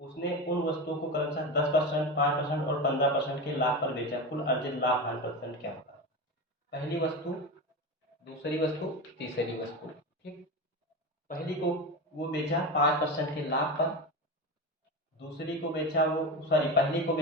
उन वस्तुओं को क्रमशः 10%, 5% और 15% के लाभ पर बेचा। कुल अर्जित लाभ हानि परसेंट क्या होगा। पहली वस्तु, दूसरी वस्तु, तीसरी वस्तु। ठीक, पहली को वो बेचा 5% के लाभ पर, दूसरी को बेचा वो सॉरी पहली को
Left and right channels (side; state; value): both; normal; correlation 0.22